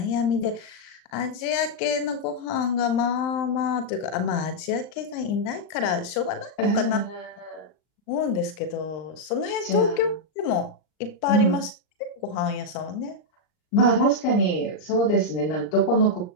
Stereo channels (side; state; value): right; late; 39 ms